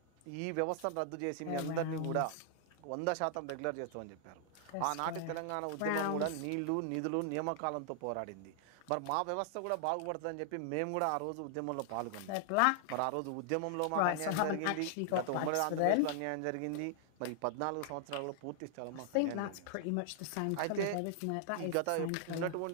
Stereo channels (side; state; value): both; different; correlation -0.01